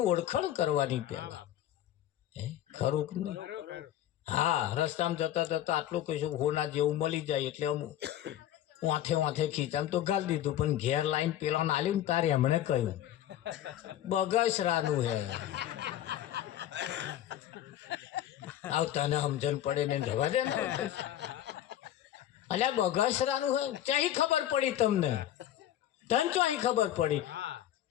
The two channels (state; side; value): quieter; right; 12.1 dB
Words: ઓળખાણ કરવાની પહેલા ખરું કે નહીં હા રસ્તામાં જતા જતા આટલું કહીશું હોના જેવું મળી જાય એટલે અમુક વાંથે ખીચામ તો ગાલ દીધું પણ ઘેર લાઈન પેલા આલ્યું ને તારે એમણે કહ્યું બગસરાનું હે આવ તને સમજણ પડે ને જવા દે ને અલ્યા બગસરાનું હોય ચાહી ખબર પડી તમને તને તો અહીં ખબર પડી